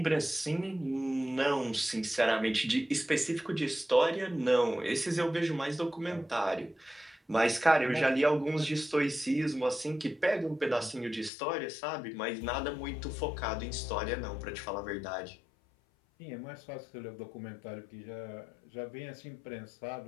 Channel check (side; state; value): right; drops out; at 11.3 s